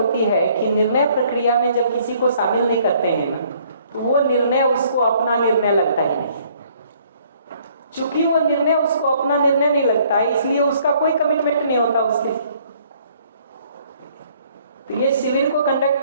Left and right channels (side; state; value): both; inverted; correlation -0.62